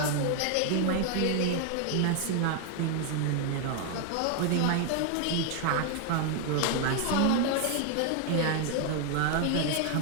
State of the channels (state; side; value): different; both; correlation 0.01